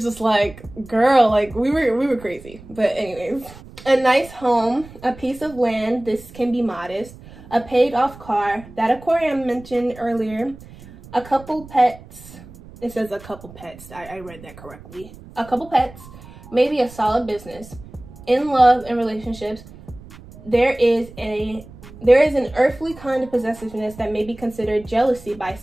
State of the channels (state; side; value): noise; right; rumble, 19 dB below the sound